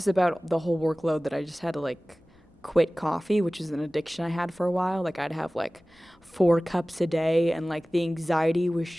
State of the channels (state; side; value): normal; both; correlation 0.98